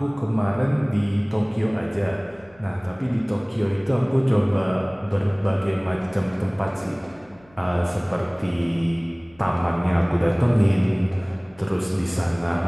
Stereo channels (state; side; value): noise; left; hum, 28 dB below the sound